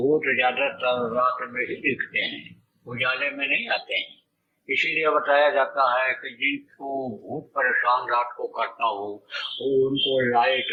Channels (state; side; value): identical; both; correlation 1.00